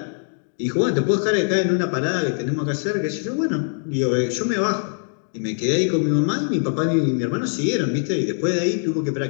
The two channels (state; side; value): silent; right; 64 dB below the other